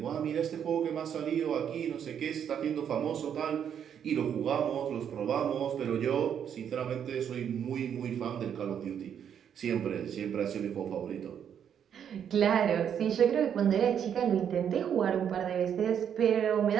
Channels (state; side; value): quieter; left; 8.6 dB